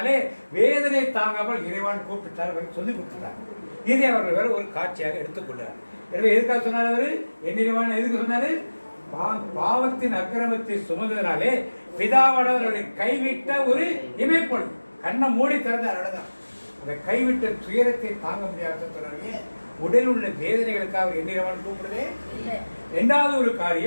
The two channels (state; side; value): inverted; both; correlation -1.00